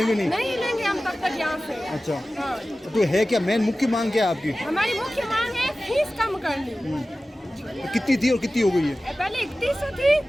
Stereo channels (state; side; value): normal; both; correlation 0.96